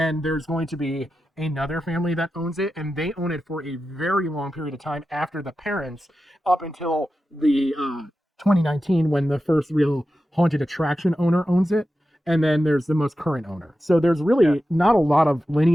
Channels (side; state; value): both; normal; correlation 0.92